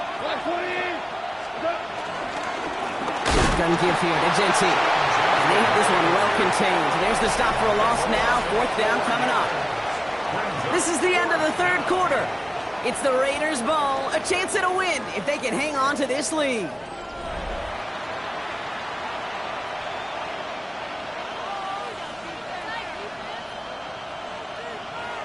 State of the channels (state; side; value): identical; both; correlation 1.00